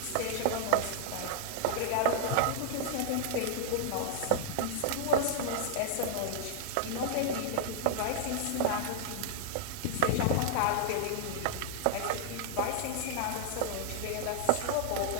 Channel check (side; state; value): both; different; correlation -0.01